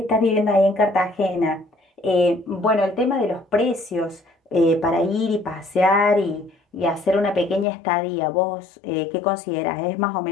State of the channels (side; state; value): right; drops out; at 7.7 s